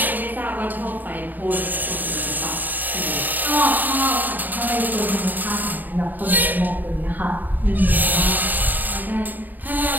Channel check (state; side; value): late; left; 0.087 ms